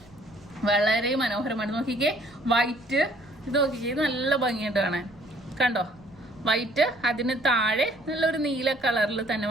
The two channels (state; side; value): noise; right; rumble, 27 dB below the sound